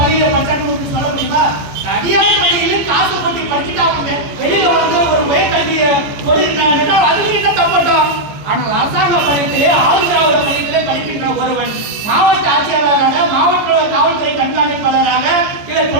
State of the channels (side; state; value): left; late; 14 ms